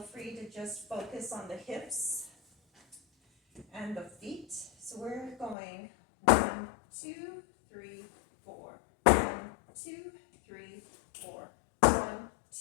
free to just focus on the hips and the feet. So we're going 1, 2, 3, 4. 1, 2, 3, 4. 1,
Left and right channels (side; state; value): right; drops out; at 5.6 s